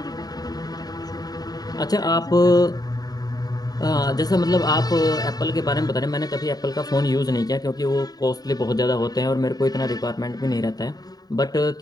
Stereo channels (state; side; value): late; right; 0.18 ms